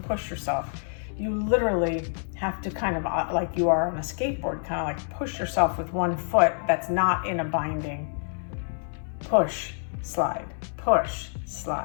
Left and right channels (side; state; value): right; silent; 58 dB below the other